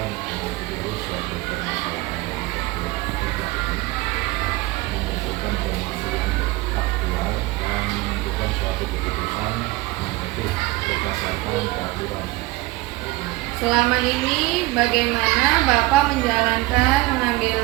mengambil dulu suatu permasalahan yang membutuhkan permasalahan faktual dan menentukan suatu keputusan untuk berdasarkan peraturan. Selama ini bagaimana Bapak menjalankan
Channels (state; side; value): quieter; left; 20.6 dB